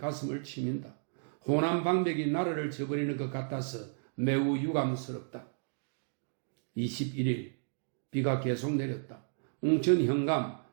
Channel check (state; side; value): silent; left; digital silence